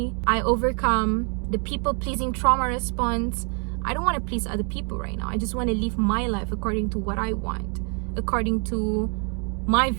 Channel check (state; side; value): quieter; left; 38.6 dB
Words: I overcome the people pleasing trauma response. I don't want to please other people right now. I just want to live my life according to what I want, according to my